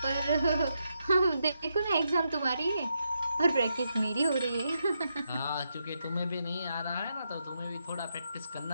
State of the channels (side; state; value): both; inverted; correlation -0.82